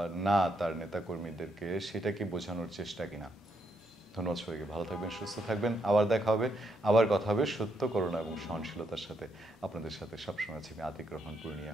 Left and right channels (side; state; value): both; normal; correlation 0.77